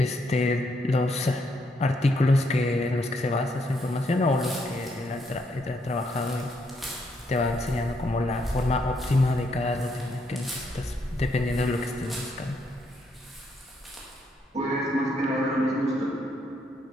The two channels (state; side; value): normal; both; correlation 0.75